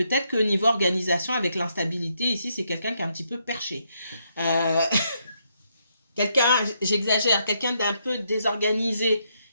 qu'au niveau organisation, avec l'instabilité, ici, c'est quelqu'un qui est un petit peu perché. Quelqu'un, j'exagère, quelqu'un d'un peu désorganisé.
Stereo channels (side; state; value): both; inverted; correlation -0.77